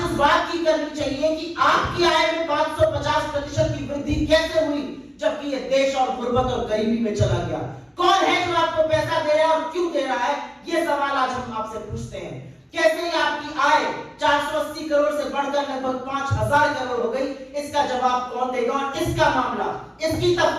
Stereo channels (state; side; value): identical; both; correlation 1.00